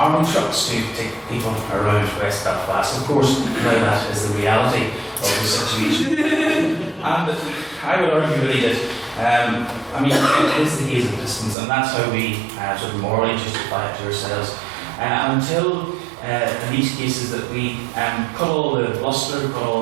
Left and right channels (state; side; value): drops out; left; at 11.6 s